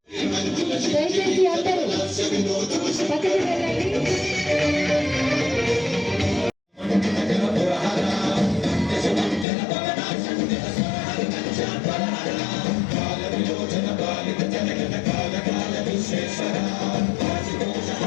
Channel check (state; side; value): drops out; right; at 9.5 s